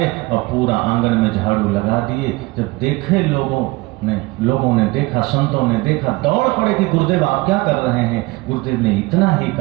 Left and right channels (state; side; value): quieter; left; 22.5 dB